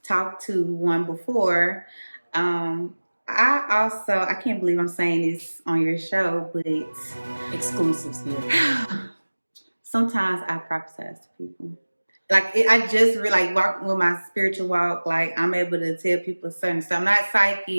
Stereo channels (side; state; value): both; inverted; correlation -1.00